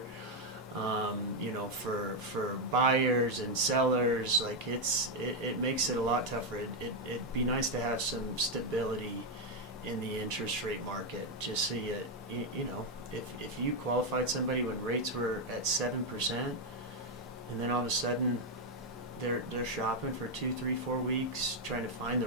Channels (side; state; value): both; normal; correlation 0.02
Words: You know, for buyers and sellers, like it makes it a lot tougher. It'd be nice to have some stability in the interest rate market, just so you know, if you qualified somebody when rates were at 7%, and then all of a sudden they're shopping for 2, 3, 4 weeks trying to find